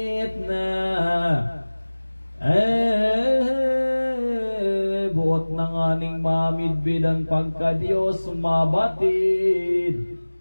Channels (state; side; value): inverted; both; correlation -1.00